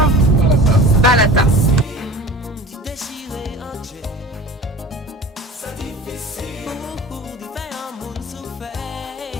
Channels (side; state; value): both; normal; correlation 0.38